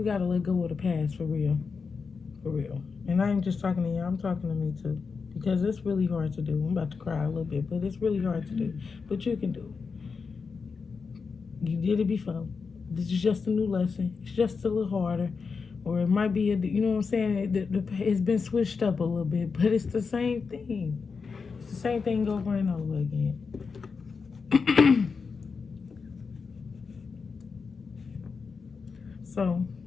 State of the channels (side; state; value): right; quieter; 5.2 dB